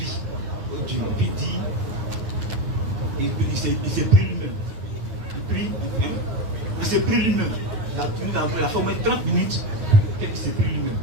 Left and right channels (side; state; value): left; late; 9.2 ms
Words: au Dieu? Et puis il dit, il s'est pris lui-même. Il prie, hein? Il s'est pris lui-même. Il a fait au moins 30 minutes qu'il s'est pris lui-même.